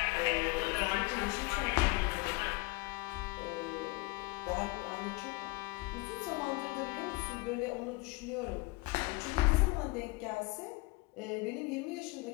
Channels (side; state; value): right; quieter; 23.6 dB